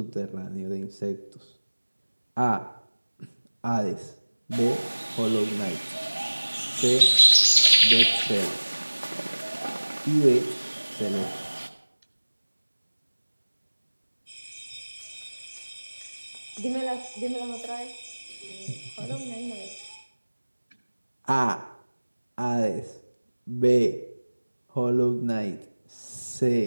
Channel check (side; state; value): both; inverted; correlation -1.00